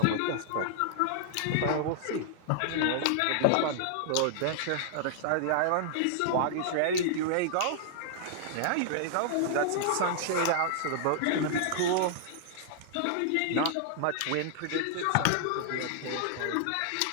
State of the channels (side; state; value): both; different; correlation -0.01